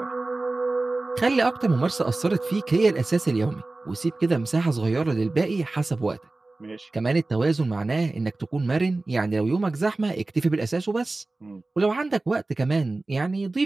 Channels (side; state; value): left; quieter; 3.2 dB